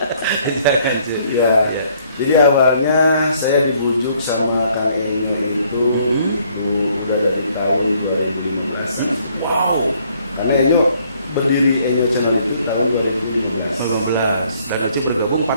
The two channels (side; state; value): both; inverted; correlation -0.65